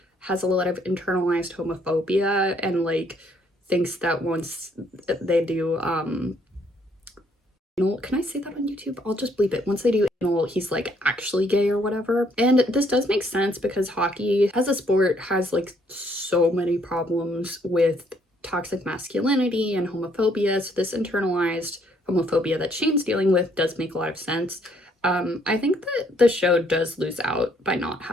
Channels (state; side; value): normal; both; correlation 0.67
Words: has a lot of internalized homophobia and, like, thinks that once they do can I say that on YouTube? I'll just bleep it. Once they do anal, he's, like, actually gay or whatever. And this does make sense because hockey as a sport has, like, so many problems with toxic masculinity and homophobia. So this internalized homophobia that Shane's dealing with does make a lot of sense. I think that the show does lose out by not